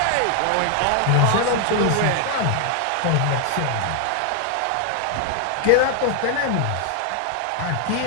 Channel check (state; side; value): different; both; correlation 0.00